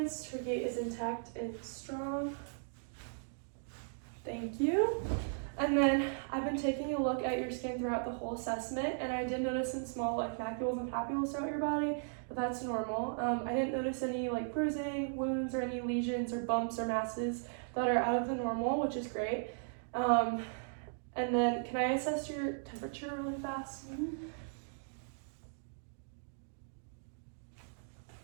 Her gait is intact and strong. Thank you. And then I've been taking a look at your skin throughout the whole assessment, and I did notice some small like macules and papules throughout your body, but that's normal. I didn't notice any like bruising, wounds, or any lesions or bumps or masses that are out of the normal, which is great. And then can I assess your temperature really fast? Mm-hmm.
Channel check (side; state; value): left; silent; digital silence